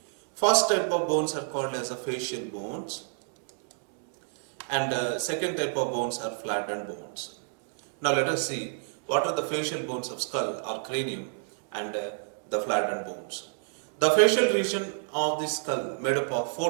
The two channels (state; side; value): silent; left; digital silence